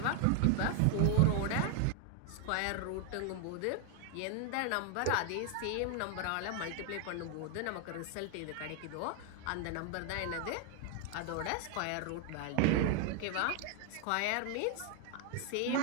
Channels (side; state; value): both; different; correlation 0.00